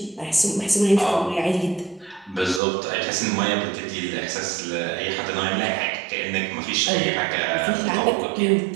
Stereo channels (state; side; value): drops out; left; at 2.6 s